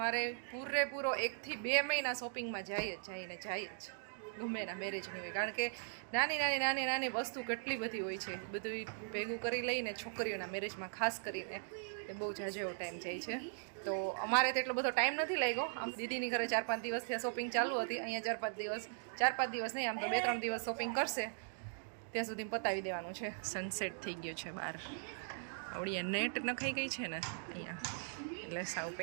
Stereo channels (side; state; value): left; silent; digital silence